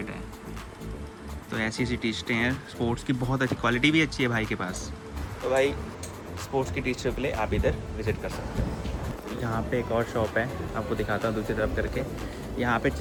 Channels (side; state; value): both; identical; correlation 1.00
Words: है। तो ऐसी ऐसी टी शर्टें हैं स्पोर्ट्स की, बहुत अच्छी क्वालिटी भी अच्छी है भाई के पास। तो भाई स्पोर्ट्स की टी शर्ट के लिए आप इधर विज़िट कर सकते हो। यहाँ पे एक और शॉप है, आपको दिखाता हूँ दूसरी तरफ करके। यहाँ पे